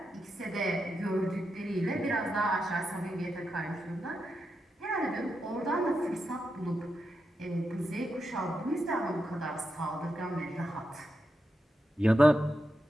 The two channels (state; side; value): normal; both; correlation 0.86